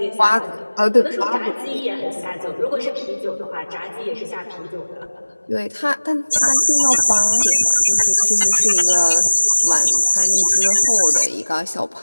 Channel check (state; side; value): inverted; both; correlation -1.00